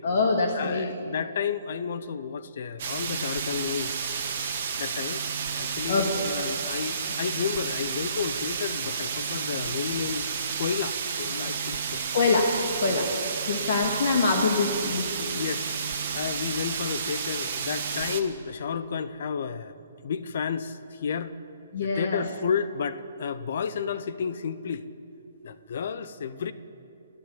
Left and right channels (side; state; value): both; inverted; correlation -0.63